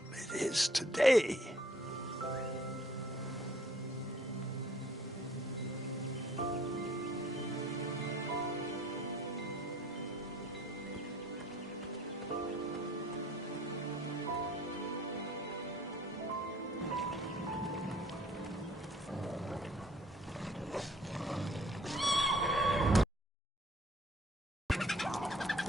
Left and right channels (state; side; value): normal; both; correlation 0.57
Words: it is today.